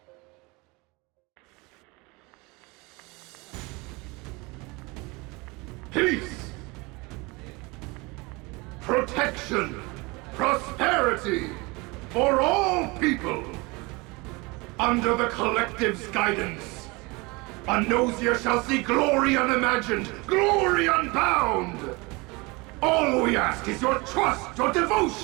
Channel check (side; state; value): left; quieter; 25.6 dB